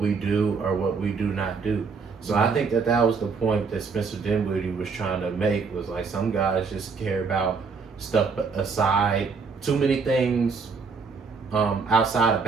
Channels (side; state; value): left; quieter; 5.1 dB